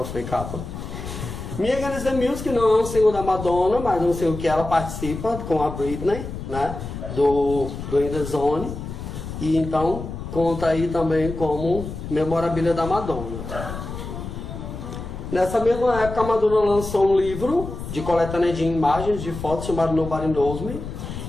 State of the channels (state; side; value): noise; left; rumble, 8 dB below the sound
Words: foi capa. Me Against the Music não é um single da Madonna, mas é um single que ela participa com a Britney, né, do In The Zone, e então conta aí também como memorabilia da Madonna. Nessa mesma época, a Madonna lançou um livro de coletânea de imagens, de fotos, chamado Nobody Knows Me.